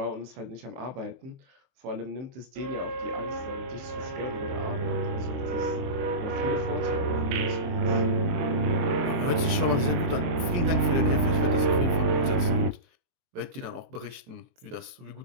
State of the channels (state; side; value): late; left; 22 ms